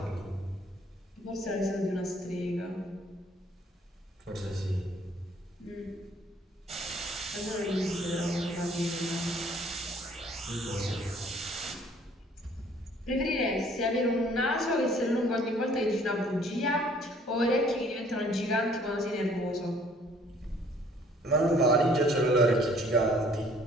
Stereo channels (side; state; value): both; normal; correlation 0.58